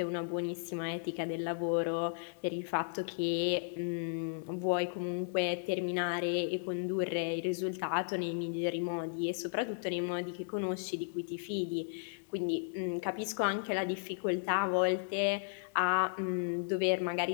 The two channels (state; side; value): silent; right; digital silence